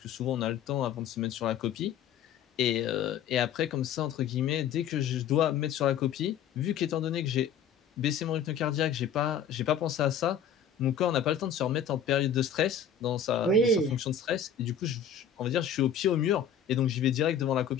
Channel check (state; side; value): quieter; right; 7.6 dB